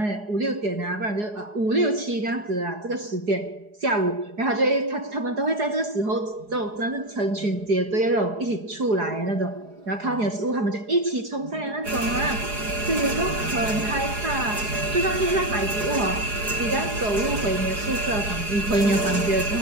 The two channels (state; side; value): late; left; 4.8 ms